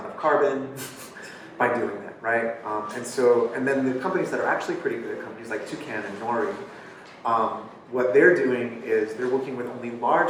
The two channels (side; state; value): both; identical; correlation 1.00